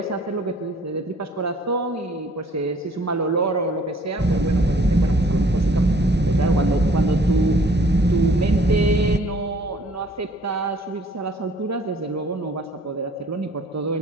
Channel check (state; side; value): normal; both; correlation 0.57